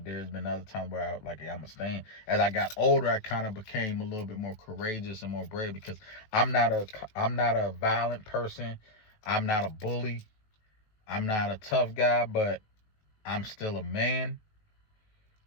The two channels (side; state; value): right; late; 19 ms